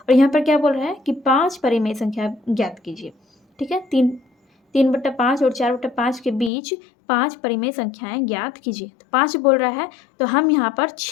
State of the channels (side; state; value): right; drops out; at 6.5 s